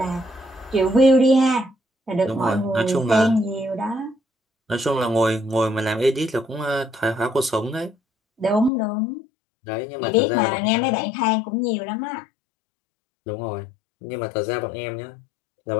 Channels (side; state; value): right; drops out; at 8.7 s